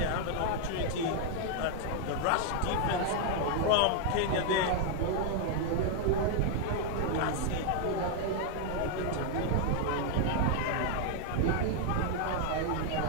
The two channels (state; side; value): different; both; correlation 0.00